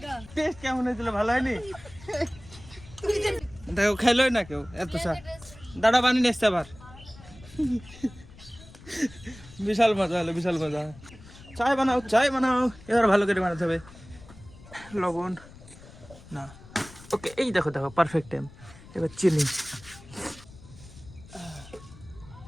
টেস্ট কেমন হয়েছিল, ভালো হয়নি? দেখো খাইলোই না কেউ এত চা। দাঁড়া বানিয়ে এসছে আবার। বিশাল মজা হলো, বিশাল মজা। চায় বানাও, এবার ভালো করে বানাতে হবে। লবণ না, ওকে, এই দেখো পারফেক্ট টাইম। এবার চিনি,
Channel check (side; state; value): left; noise; rumble, 20 dB below the sound